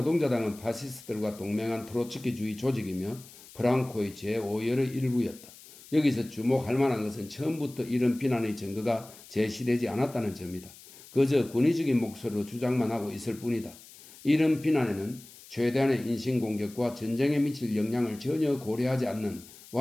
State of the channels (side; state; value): left; noise; hiss, 20 dB below the sound